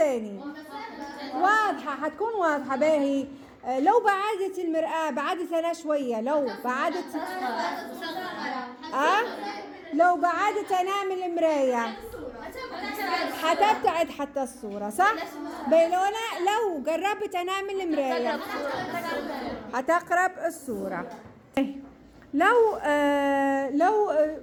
واضحة، حتكون واضحة باهي. لو بعدت المرآة، بعدت أنا شوية، لو بعدت أنا من المراية حتبتعد حتى الصورة صح؟ لو قربت أنا من المراية حتقرب الصورة. لو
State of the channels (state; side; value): identical; both; correlation 1.00